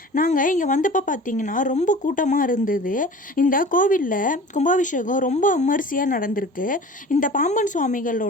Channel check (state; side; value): normal; both; correlation 0.40